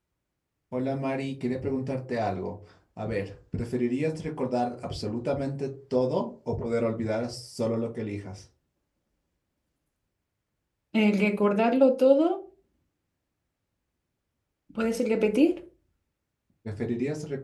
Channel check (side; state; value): both; identical; correlation 1.00